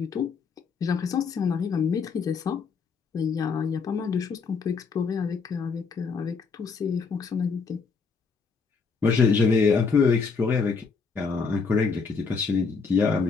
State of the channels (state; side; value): quieter; right; 5.1 dB